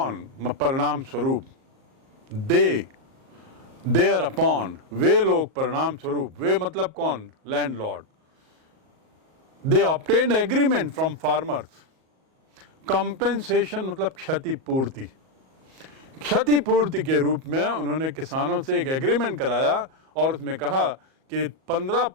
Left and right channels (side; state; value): left; late; 38 ms